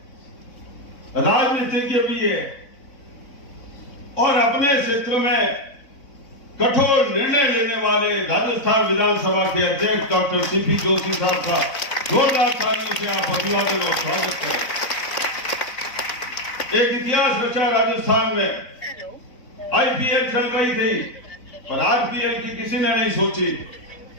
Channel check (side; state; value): right; late; 4.0 ms